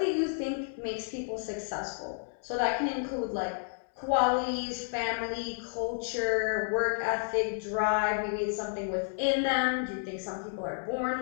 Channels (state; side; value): silent; right; digital silence